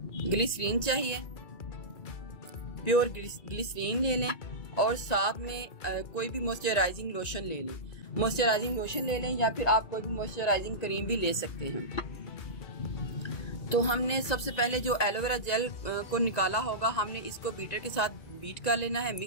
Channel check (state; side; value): late; right; 1.9 ms